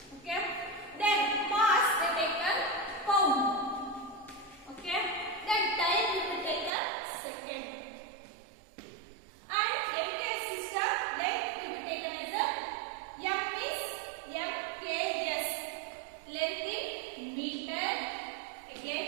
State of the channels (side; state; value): left; drops out; at 6.7 s